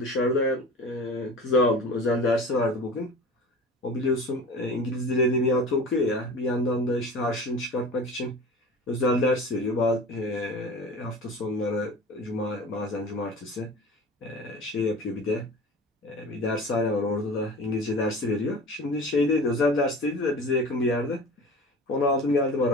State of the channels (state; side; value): normal; both; correlation 0.37